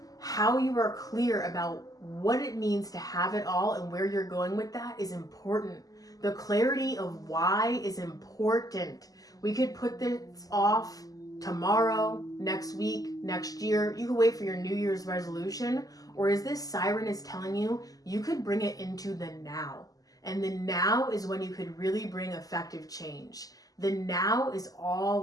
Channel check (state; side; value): late; right; 0.17 ms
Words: How you are clear about what it means to have it all and where you're going with that is important. The clarity of why is important. We could put this off tomorrow, next week, next year. You could wait for your New Year's resolution. Or as this siren is telling you, you could bring it into the now. And the now is when you could really bring effective change. The now is